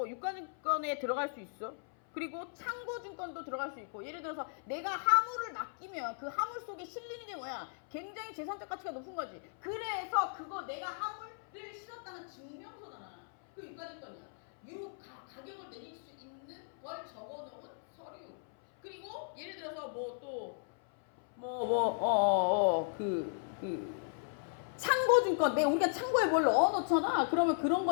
유가증권에 들어갈 수 있어. 그리고 창고증권도 들어갈 수 있고 예를 들어서 내가 화물을 맡기면 그 화물 속에 실리는 게 뭐야? 굉장히 재산적 가치가 높은 거지. 그래서 그거 내가 화물을 실었다는 증명서잖아. 그 유가증권이야. 가격을 내릴 수 있는 걸 적어놓은 서류. 그리고 예를 들어서 창고증권, 우리가 창고에 뭘 넣어놓잖아. 그러면 그런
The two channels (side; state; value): right; silent; 54 dB below the other